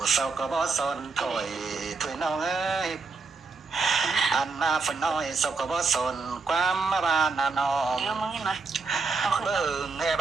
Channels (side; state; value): left; quieter; 4.4 dB